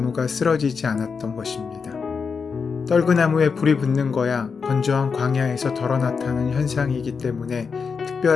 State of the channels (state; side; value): quieter; right; 5.5 dB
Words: 쓰러지지 않았던 것입니다. 떨그나무에 불이 붙는 거야 건조한 광야에서 덜어 나타나는 현상이기 때문에